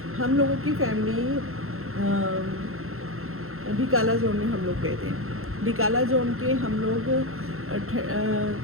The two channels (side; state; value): left; late; 0.62 ms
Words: हम लोगों की फैमिली ढिकाला जोन में हम लोग गए थे। ढिकाला जोन के हम लोग